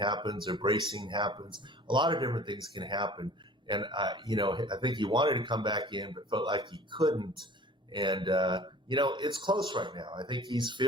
or bracing happens. A lot of different things can happen. And, I think he wanted to come back in, but felt like he couldn't. And, it's close right now. I think he's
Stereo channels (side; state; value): both; normal; correlation 0.47